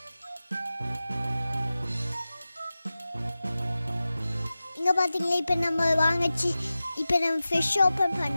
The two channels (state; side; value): inverted; both; correlation -0.95